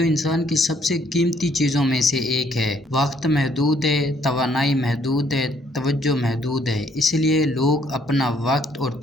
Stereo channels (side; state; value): both; normal; correlation 0.67